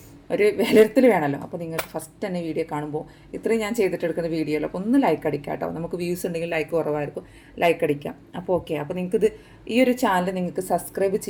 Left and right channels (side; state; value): both; identical; correlation 1.00